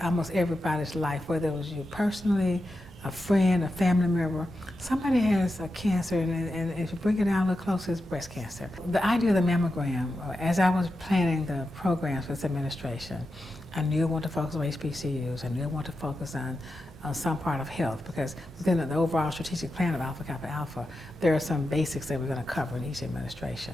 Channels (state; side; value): normal; both; correlation 0.90